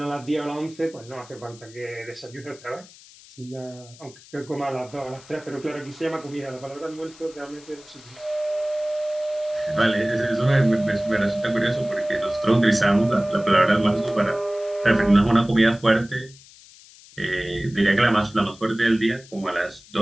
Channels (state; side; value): noise; left; hiss, 22 dB below the sound